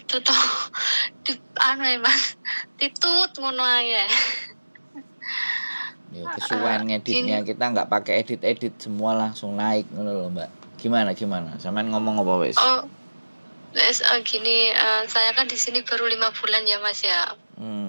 toh. Mas, titut ngono ae. Ya, kesuwen ngeditnya kita nggak pakai edit semua langsung naik ngono loh Mbak. Gimana? Sampean ngomong apa wes? Oh, gini, saya kan di sini baru 5 bulan ya Mas ya.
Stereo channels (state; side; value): inverted; both; correlation -1.00